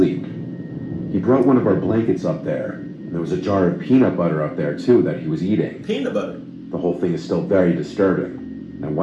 He brought one of our blankets up there, and there was a jar of peanut butter up there too that he was eating. Peanut butter? The whole thing is still very disturbing. I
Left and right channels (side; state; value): both; identical; correlation 1.00